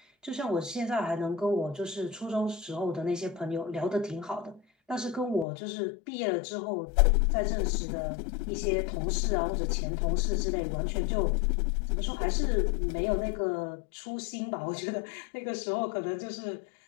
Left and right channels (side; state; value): right; drops out; at 5.5 s